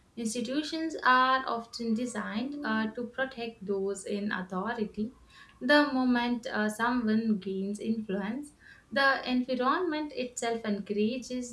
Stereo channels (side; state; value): both; identical; correlation 1.00